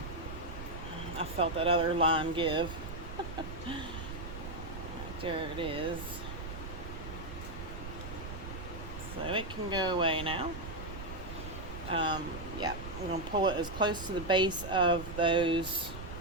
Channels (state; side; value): noise; right; rumble, 9 dB below the sound